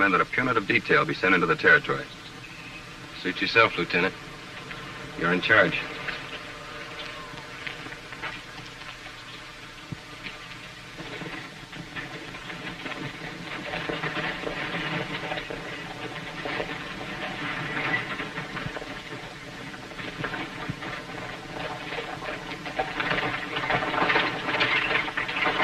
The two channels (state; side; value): identical; both; correlation 1.00